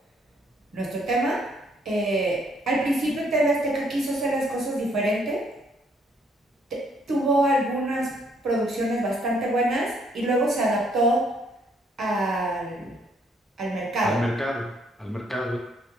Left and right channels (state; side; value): normal; both; correlation 0.68